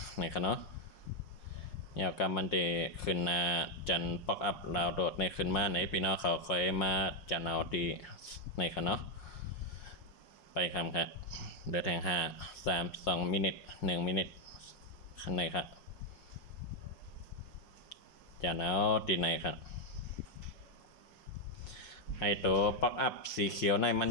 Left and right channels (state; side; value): late; right; 5.6 ms